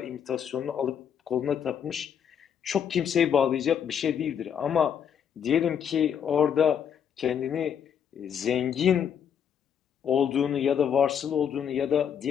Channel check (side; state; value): right; quieter; 8.2 dB